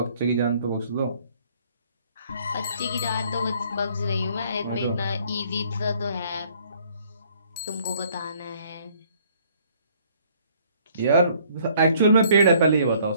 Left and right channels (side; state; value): both; inverted; correlation -0.61